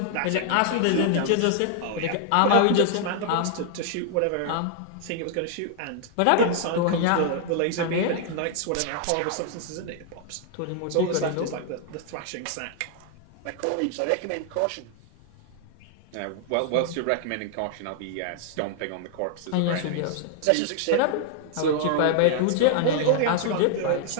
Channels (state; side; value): different; both; correlation 0.00